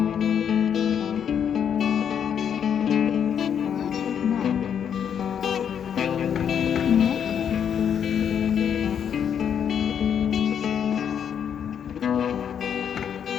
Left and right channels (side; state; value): right; quieter; 8.2 dB